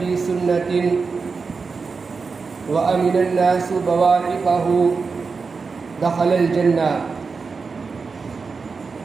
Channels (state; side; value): quieter; left; 4.8 dB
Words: سنة وأمن الناس بوائقه دخل الجنة.